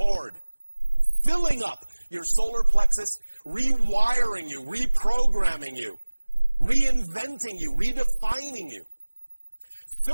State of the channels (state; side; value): inverted; both; correlation -1.00